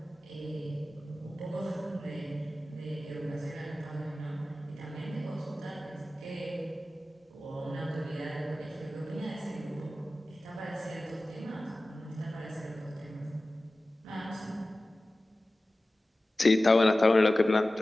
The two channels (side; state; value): both; normal; correlation 0.96